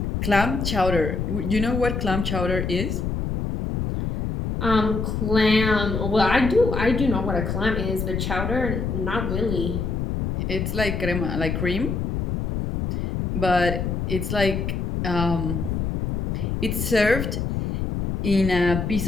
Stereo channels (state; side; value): noise; left; rumble, 2 dB below the sound